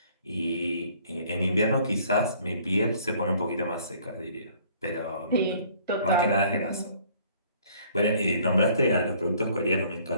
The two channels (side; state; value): both; inverted; correlation -0.58